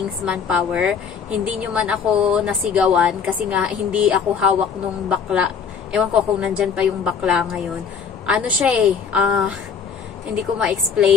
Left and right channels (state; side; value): quieter; right; 6.4 dB